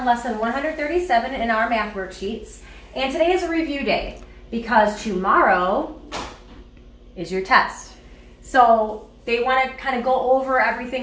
lesson 137 in our math worksheets, and today is a review day because tomorrow is your test. So they want to kind of go over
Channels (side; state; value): both; identical; correlation 1.00